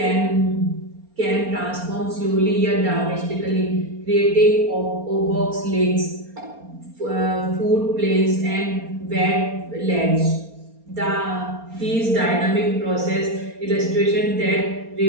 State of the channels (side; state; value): left; late; 4.3 ms